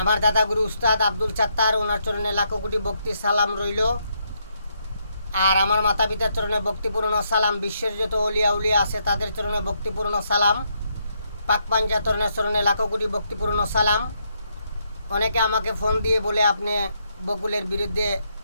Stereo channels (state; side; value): inverted; both; correlation -0.77